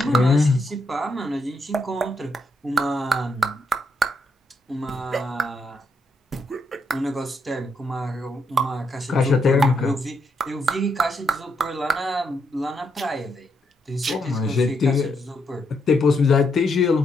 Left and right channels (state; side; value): normal; both; correlation 0.78